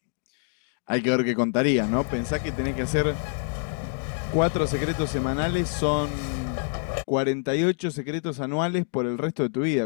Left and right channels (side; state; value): right; silent; 61 dB below the other